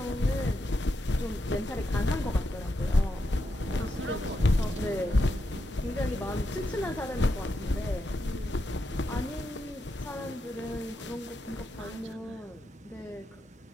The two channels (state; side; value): normal; both; correlation 0.85